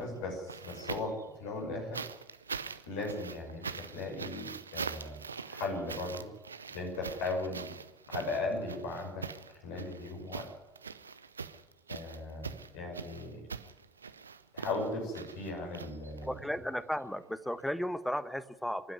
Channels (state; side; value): normal; both; correlation 0.37